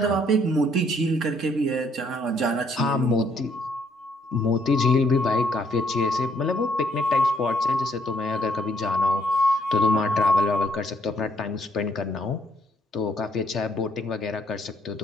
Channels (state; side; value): normal; both; correlation 0.69